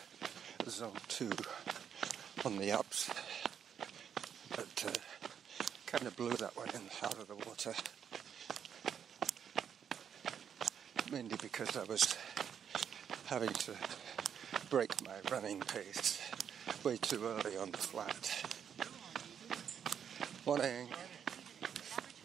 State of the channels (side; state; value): left; quieter; 8.1 dB